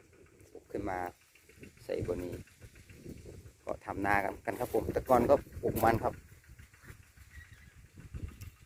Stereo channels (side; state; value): both; identical; correlation 1.00